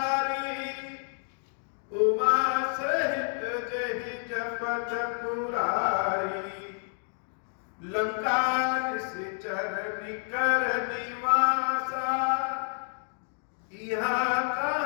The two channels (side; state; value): right; silent; 57 dB below the other